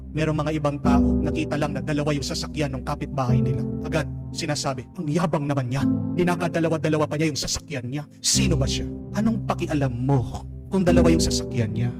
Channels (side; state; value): both; identical; correlation 1.00